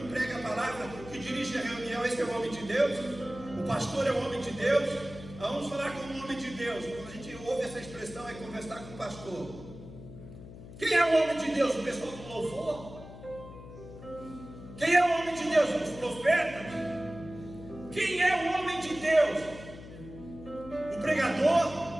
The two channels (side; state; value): left; noise; hum, 15 dB below the sound